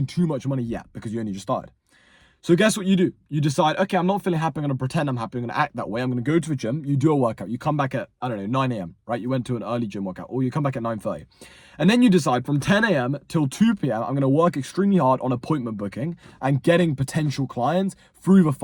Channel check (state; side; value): identical; both; correlation 1.00